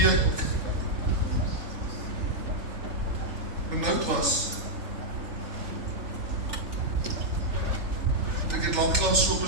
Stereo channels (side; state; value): left; late; 3.4 ms